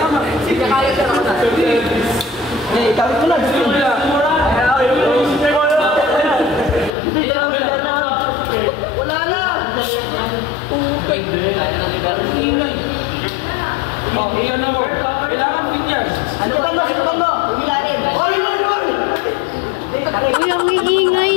Sige, kaya ka naman. Eh, tawid ko na. Wala na. Upay. Kaya na ni Bernie. Ingay. Oh, iyan na mo. Kailangan bigyan. Ano ba mo? Umilalim. Oy! Uy, ang iingay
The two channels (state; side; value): drops out; right; at 6.9 s